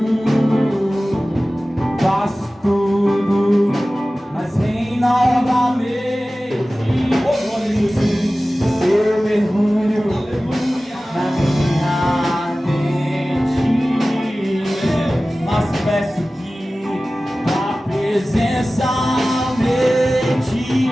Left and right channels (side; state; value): both; normal; correlation 0.97